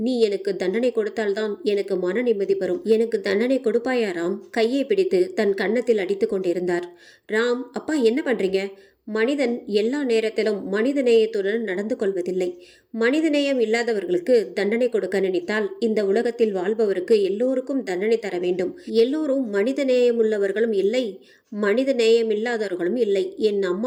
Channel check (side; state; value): both; identical; correlation 1.00